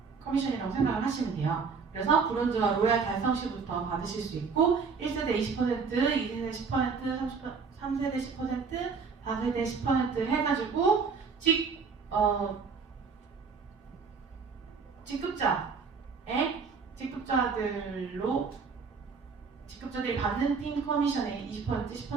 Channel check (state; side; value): quieter; left; 5.3 dB